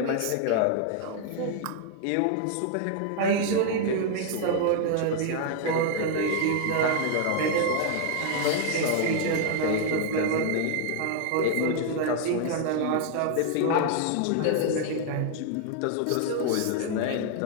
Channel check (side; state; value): both; different; correlation 0.00